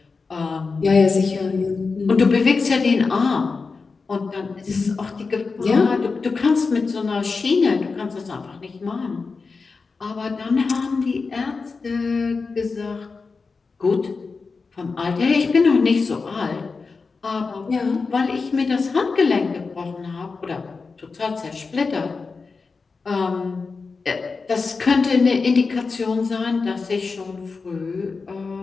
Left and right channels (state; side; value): quieter; right; 4.5 dB